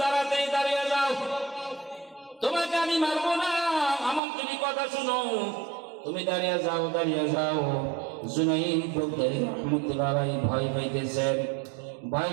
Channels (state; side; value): drops out; left; at 4.2 s